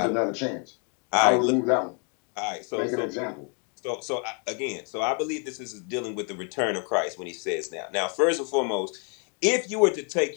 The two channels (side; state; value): right; quieter; 38.6 dB